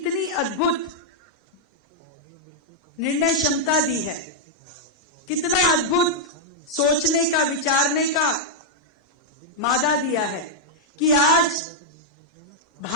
अद्भुत निर्णय क्षमता दी है, कितना अद्भुत सोचने का, विचारने का मादा दिया है कि आज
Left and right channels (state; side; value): normal; both; correlation -0.04